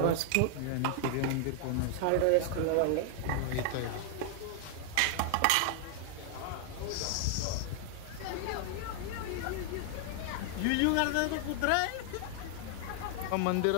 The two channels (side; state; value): both; different; correlation 0.00